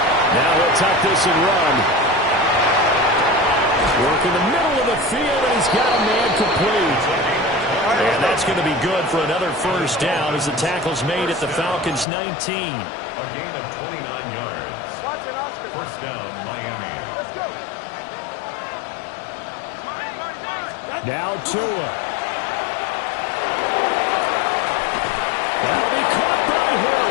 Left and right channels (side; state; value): right; drops out; at 12.1 s